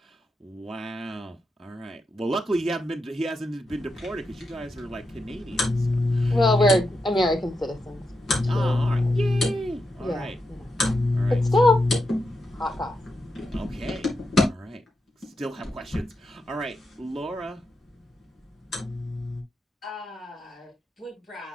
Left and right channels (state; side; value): normal; both; correlation 0.86